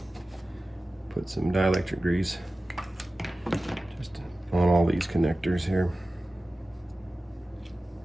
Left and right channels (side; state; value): both; normal; correlation 0.96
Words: put some dielectric grease just on all these connectors here.